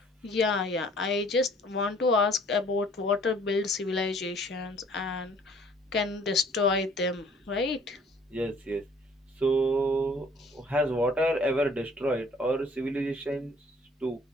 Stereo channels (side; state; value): both; normal; correlation 0.56